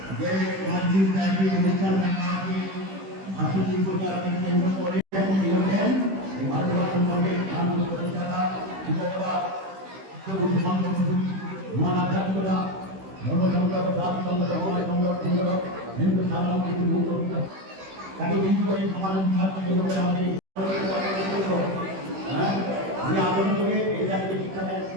যে মসজিদ নাকি অনুষ্ঠান নাকি ভাষণ প্রচারণে কেন্দ্র করে দিয়েছেন এই ভারতবর্ষের সঙ্গে আনন্দ প্রতিষ্ঠাতা বিজয়বাদ মহান আধ্যাত্মিকতা ধর্মসংগ্রহ জাতি সংগ্রহ সংগ্রহ হিন্দু সাধারণ কিছু মুক্ত তাকে কিন্তু এই সমাজ বিভাগকে আমাদের আমি আন্দোলন করে এই জাতিকে শিক্ষা দেন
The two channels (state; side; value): late; left; 16 ms